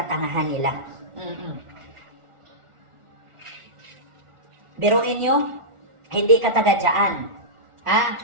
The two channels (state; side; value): late; left; 1.4 ms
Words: nila. Biruin nyo, hindi ka taga dyan.